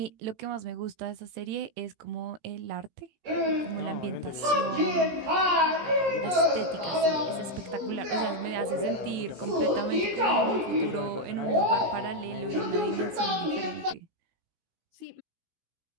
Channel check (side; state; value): left; late; 17 ms